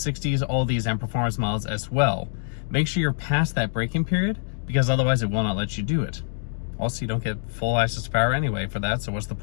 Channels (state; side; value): silent; right; digital silence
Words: all these M Performance models as well. Make sure you're past that braking period because otherwise it will not let you do it. Also, you don't get full access to power anyway for that, so what's the